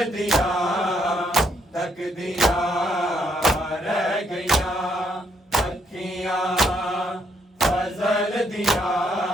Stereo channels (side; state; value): both; normal; correlation 0.72